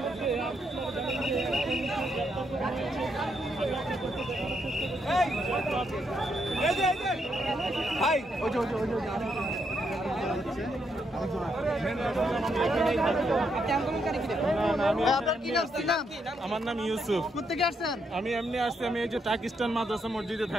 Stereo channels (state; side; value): normal; both; correlation 0.78